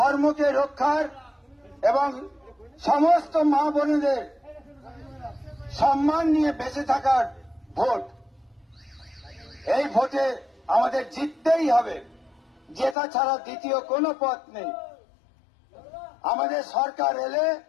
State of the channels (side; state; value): right; drops out; at 13.0 s